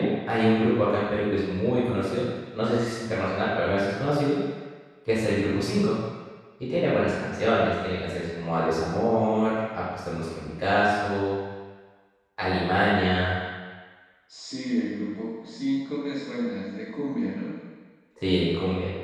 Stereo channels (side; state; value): both; identical; correlation 1.00